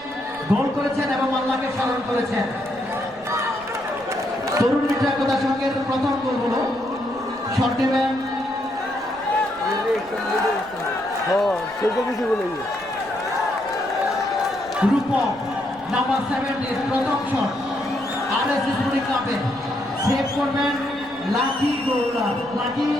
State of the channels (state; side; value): noise; right; rumble, 24 dB below the sound